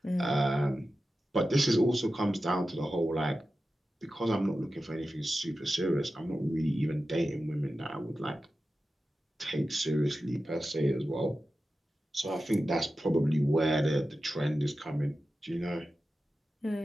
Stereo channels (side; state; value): both; normal; correlation 0.93